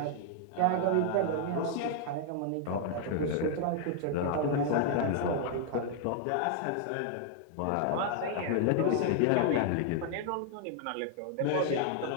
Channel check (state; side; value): different; both; correlation 0.00